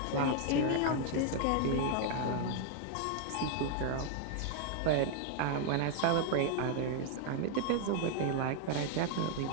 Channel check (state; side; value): different; both; correlation 0.00